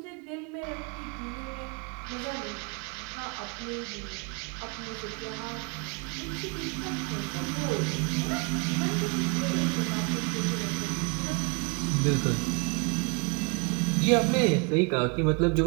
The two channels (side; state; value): left; quieter; 31.6 dB